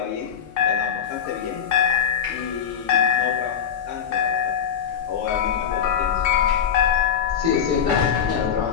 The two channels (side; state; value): right; quieter; 8.1 dB